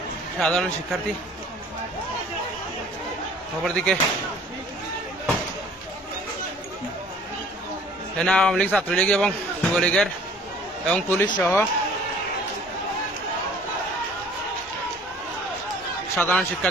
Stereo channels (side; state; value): both; normal; correlation 0.52